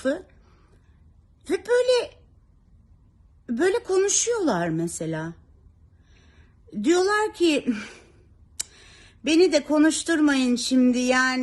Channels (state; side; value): identical; both; correlation 1.00